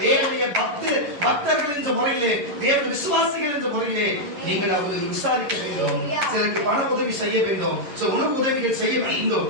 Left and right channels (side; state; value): left; late; 11 ms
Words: தேவனுடைய பக்தர்கள் என்ற முறையிலே, தேவனுடைய விசுவாசிகள் என்ற முறையிலே நீங்கள் அவர்கள் விசாரிக்க வேண்டும். சிலருக்கு பண உதவி செய்ய வேண்டும், உணவு உதவிகள் செய்ய வேண்டும்,